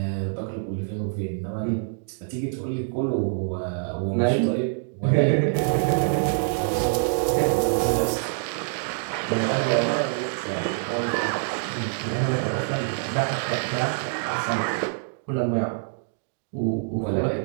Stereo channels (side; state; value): left; silent; digital silence